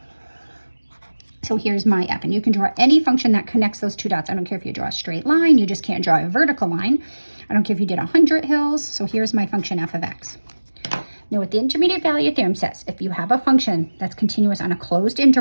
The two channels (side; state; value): both; inverted; correlation -1.00